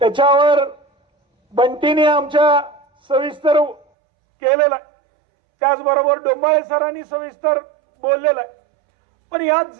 त्याच्यावर बंटीने आमच्या सविस्तर केलेला, त्याचबरोबर डोंबाळे सरांनी सविस्तर बोललेलं आहे। पण या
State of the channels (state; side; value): drops out; left; at 3.9 s